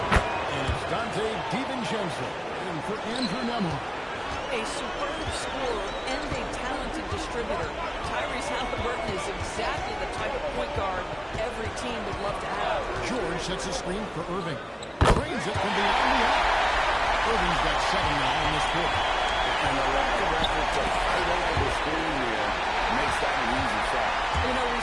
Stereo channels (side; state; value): both; identical; correlation 1.00